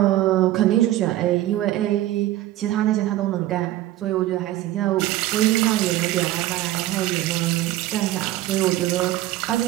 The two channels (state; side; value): quieter; left; 14.8 dB